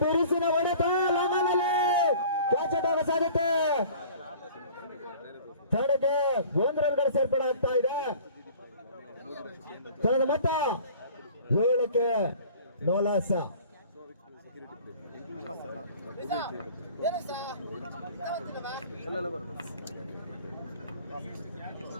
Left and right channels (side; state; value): both; inverted; correlation -0.47